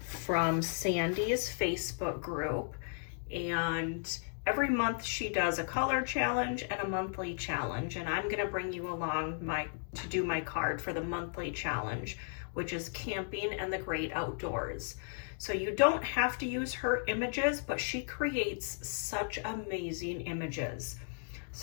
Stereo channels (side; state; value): right; silent; digital silence